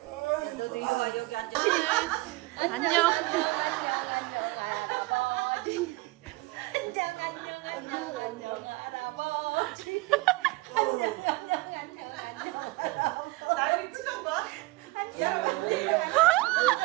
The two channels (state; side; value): quieter; left; 21.9 dB